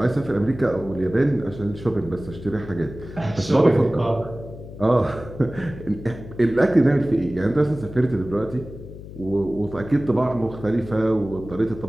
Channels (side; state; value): left; noise; hum, 14 dB below the sound